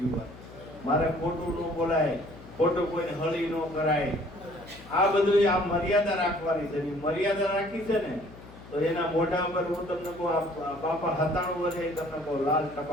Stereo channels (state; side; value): noise; left; hum, 18 dB below the sound